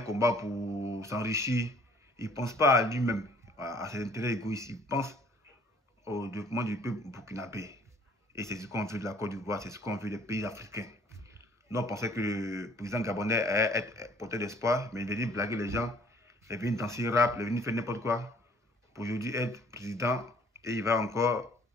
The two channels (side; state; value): both; normal; correlation 0.57